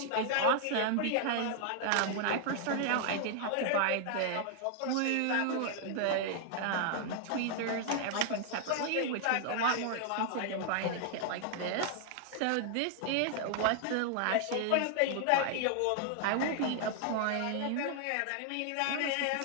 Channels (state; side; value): different; both; correlation 0.00